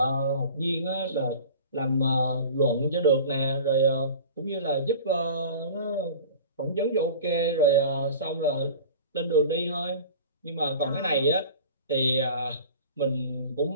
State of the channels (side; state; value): both; inverted; correlation -0.39